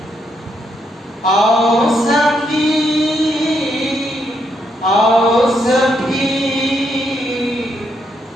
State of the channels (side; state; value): both; normal; correlation 0.77